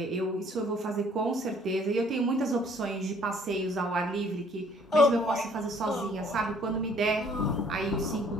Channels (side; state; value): both; normal; correlation 0.60